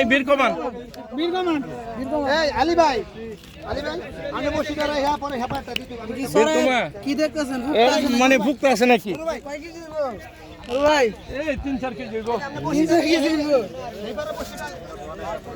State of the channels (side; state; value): both; identical; correlation 1.00